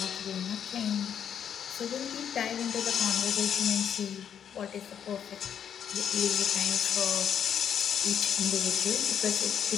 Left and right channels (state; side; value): quieter; right; 8.6 dB